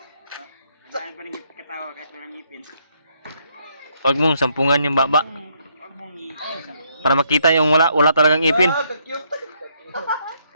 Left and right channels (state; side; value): inverted; both; correlation -0.72